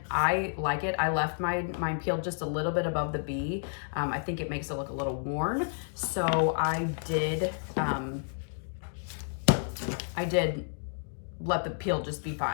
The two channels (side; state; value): right; silent; digital silence